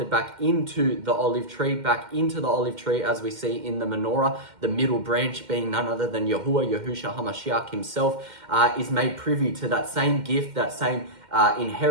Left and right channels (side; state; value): left; late; 2.1 ms